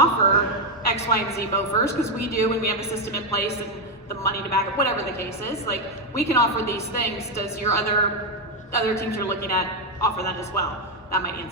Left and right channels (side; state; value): both; normal; correlation 0.05